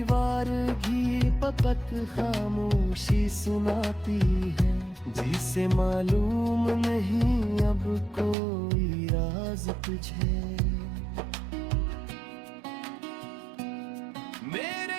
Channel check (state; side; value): drops out; left; at 8.3 s